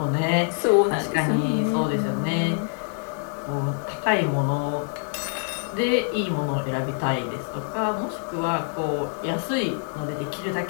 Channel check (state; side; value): silent; right; 59 dB below the other